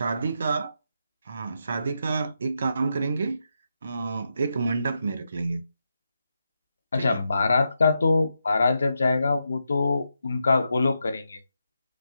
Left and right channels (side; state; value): both; inverted; correlation -0.85